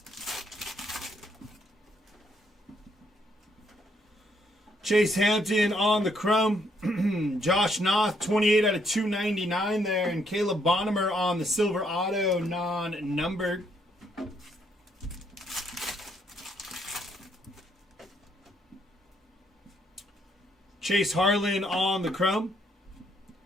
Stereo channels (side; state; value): both; normal; correlation 0.72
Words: Chase Hampton on the chrome. Josh Noth, 28 out of 299 there. And Caleb Bonnemer on the silver auto, non-numbered. Chase Harlan on the chrome.